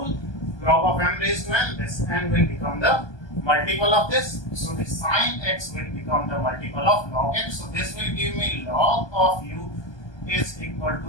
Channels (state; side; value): late; right; 1.2 ms